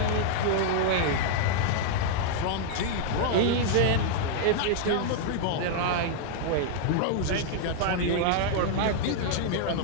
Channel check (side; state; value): both; different; correlation 0.00